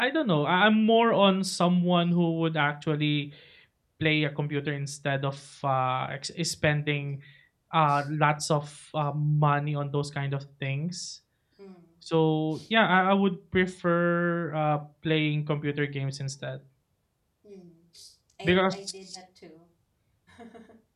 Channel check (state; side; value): identical; both; correlation 1.00